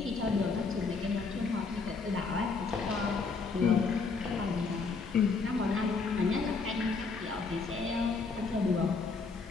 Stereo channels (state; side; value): quieter; right; 4.5 dB